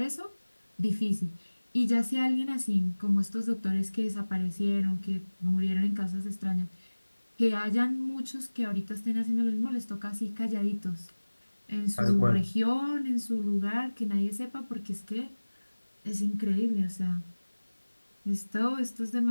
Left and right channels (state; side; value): inverted; both; correlation -1.00